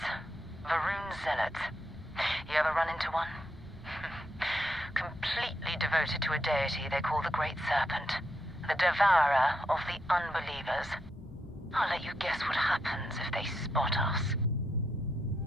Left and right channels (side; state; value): both; normal; correlation 0.80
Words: Varun Zealots. You ever run into one? Completely devoted to a deity they call the Great Serpent. The devourer of the unbelievers. I'll let you guess what happens if they spot us.